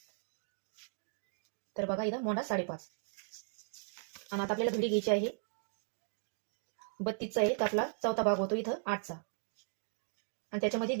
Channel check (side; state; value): left; silent; digital silence